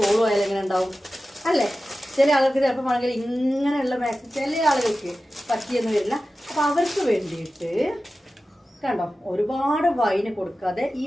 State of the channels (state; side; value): normal; both; correlation 0.94